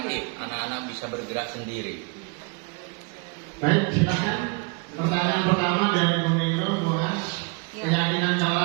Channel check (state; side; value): quieter; left; 31.0 dB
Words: anak-anak bisa bergerak sendiri. Baik, silakan. Pertanyaan pertama dari Bu Nero, Muras. Keyakinan